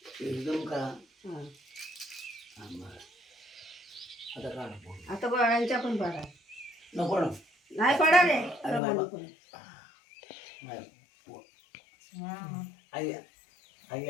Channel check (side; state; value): right; drops out; at 8.8 s